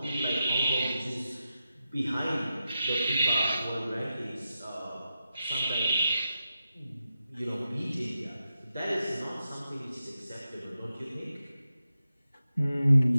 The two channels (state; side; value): inverted; both; correlation -0.90